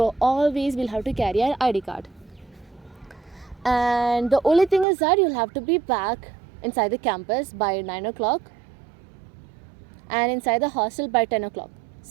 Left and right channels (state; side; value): drops out; left; at 4.9 s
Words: always we'll have to carry our ID card. And the only thing is that you'll have to be back inside the campus by 9 o'clock and inside the hostel by 10 o'clock.